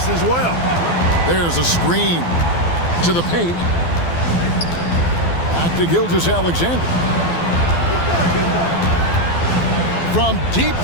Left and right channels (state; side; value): late; right; 12 ms